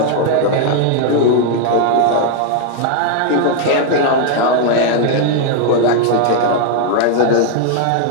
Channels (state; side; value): different; both; correlation 0.00